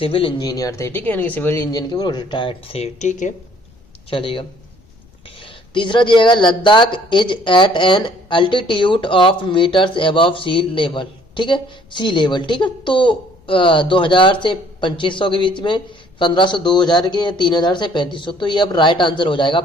इंजीनियर थे। ठीक है, यानी कि सिविल इंजीनियर के वो रिटायर्ड थे। ठीक है, चलेगा। तीसरा दिएगा Ladakh is at an altitude of metres above sea level. ठीक है, सी लेवल। ठीक है, तो 2000 से 2500 के बीच में, 1500 2000 के, 3000 से 3500, तो ये अब राइट आंसर हो जाएगा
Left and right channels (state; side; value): noise; left; rumble, 29 dB below the sound